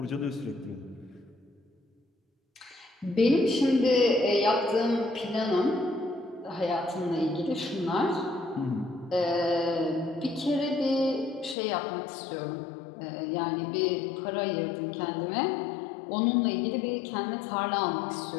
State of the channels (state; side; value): drops out; right; at 11.6 s